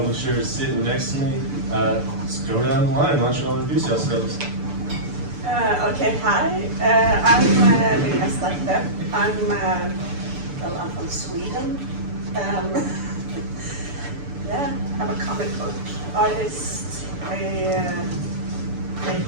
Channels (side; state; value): left; late; 6.9 ms